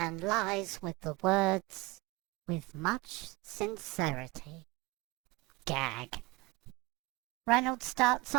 lies with the words, "with much sincerity." Gag. Reynolds starts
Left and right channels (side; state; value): left; quieter; 22.0 dB